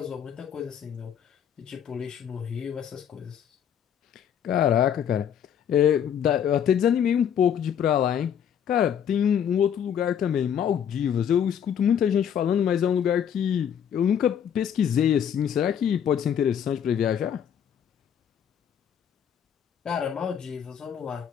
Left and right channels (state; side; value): quieter; right; 8.7 dB